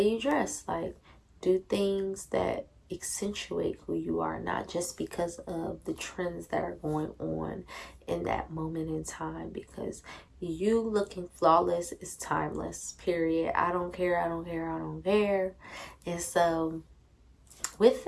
you dress. Like, do things that accentuate who you are, not just because of the trends that are going on in that moment in time, because you looking flawless is timeless, period. I don't care. And so, with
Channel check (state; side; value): identical; both; correlation 1.00